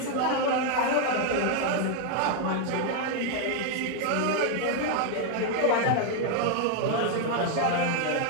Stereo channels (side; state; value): both; different; correlation 0.01